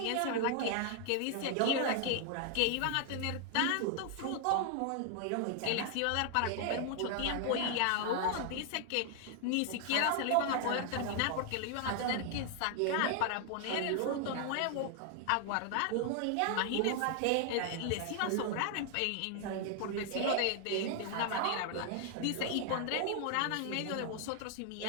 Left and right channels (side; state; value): both; different; correlation 0.00